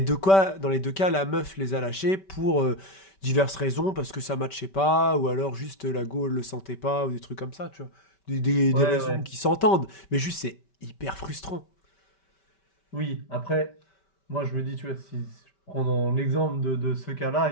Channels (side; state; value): right; late; 5.2 ms